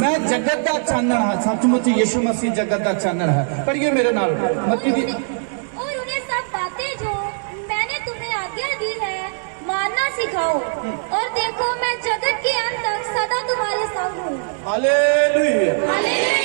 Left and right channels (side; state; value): left; silent; digital silence